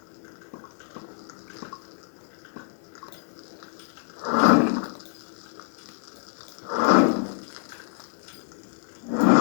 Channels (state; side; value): silent; right; digital silence